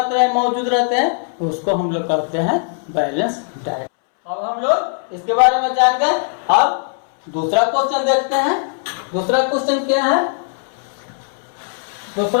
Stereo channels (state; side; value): silent; right; 67 dB below the other